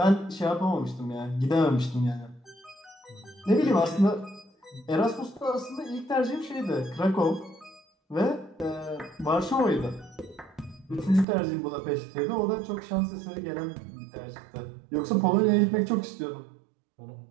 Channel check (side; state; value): left; drops out; at 11.2 s